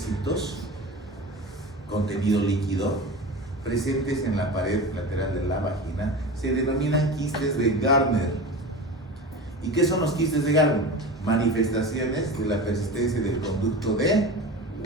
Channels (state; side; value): normal; both; correlation 0.30